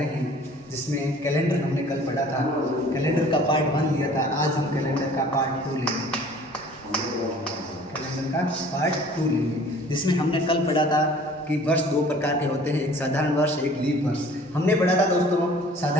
हैं, जिसमें कैलेंडर हमने कल पढ़ा था। कैलेंडर का पार्ट 1 लिया था। आज हम कैलेंडर का पार्ट 2 लेंगे। कैलेंडर का पार्ट 2 लेंगे, जिसमें हमने कल पढ़ा था कि वर्ष दो प्रकार के होते हैं, एक साधारण वर्ष, एक लीप वर्ष। हमने पढ़ा था दोस्तों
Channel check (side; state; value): both; normal; correlation 0.50